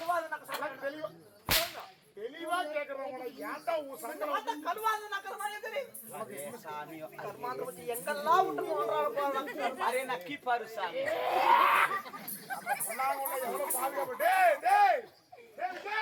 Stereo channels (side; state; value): both; identical; correlation 1.00